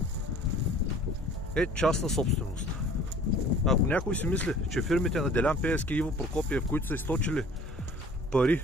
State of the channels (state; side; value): normal; both; correlation 0.49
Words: е частна собственост. Ако някой си мисли, че фирмите на Делян Пеевски и Иво Прокопиев, които са източили пари